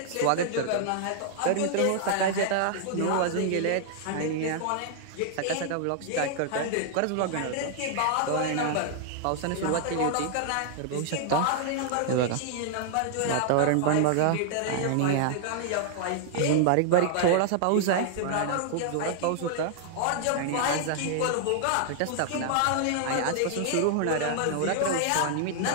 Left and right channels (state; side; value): different; both; correlation -0.01